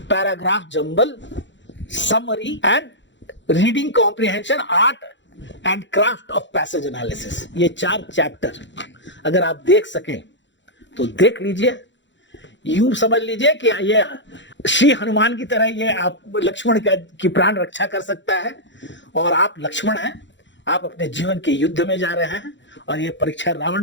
paragraph jumble, summary and reading comprehension, art and craft of passage analysis. ये 4 चैप्टर अगर आप देख सकें तो देख लीजिए, यूं समझ लीजिए कि ये श्री हनुमान की तरह ये आप लक्ष्मण की प्राण रक्षा कर सकता है, और आप लक्ष्मण हैं, आप अपने जीवन के युद्ध में जा रहे हैं और ये परीक्षा रावण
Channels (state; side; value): late; right; 0.53 ms